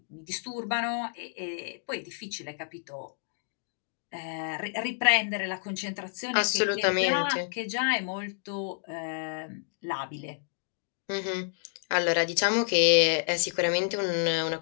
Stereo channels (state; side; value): silent; right; digital silence